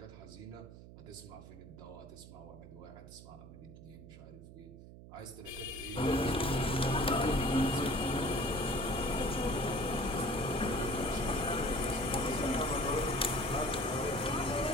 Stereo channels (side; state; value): right; noise; hum, 16 dB below the sound